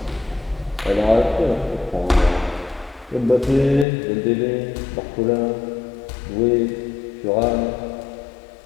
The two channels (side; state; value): right; drops out; at 3.9 s